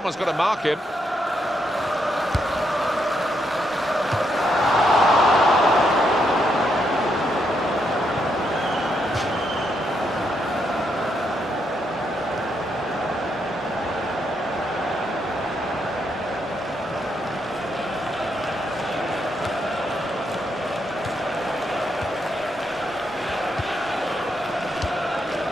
got to mark him.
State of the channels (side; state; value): both; normal; correlation 0.78